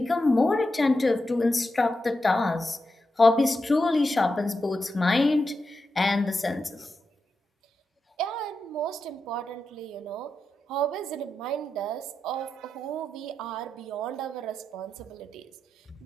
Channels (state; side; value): normal; both; correlation 0.88